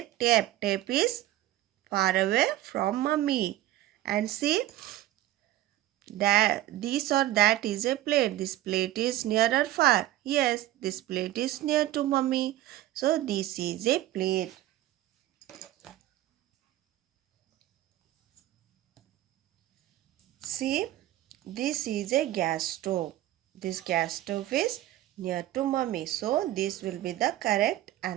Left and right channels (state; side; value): quieter; left; 14.7 dB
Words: tape. Tape is far away from mommy. And see, that this or that is a plate. This plate is near or far? Yes, this plate is near to mommy. So this is a plate. See, this is a gas stove. This gas stove is near to mommy. So this will be the correct